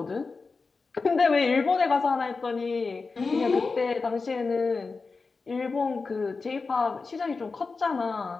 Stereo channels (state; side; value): quieter; right; 4.3 dB